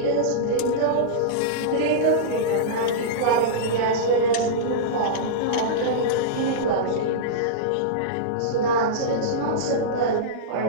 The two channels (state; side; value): different; both; correlation -0.04